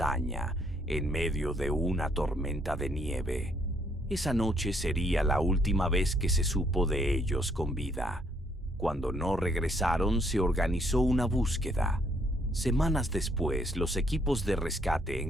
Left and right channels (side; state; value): both; normal; correlation 0.68